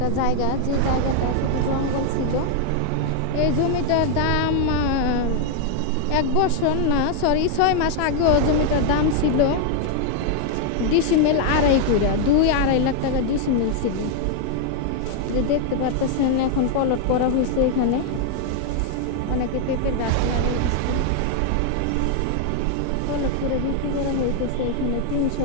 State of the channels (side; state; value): both; different; correlation 0.00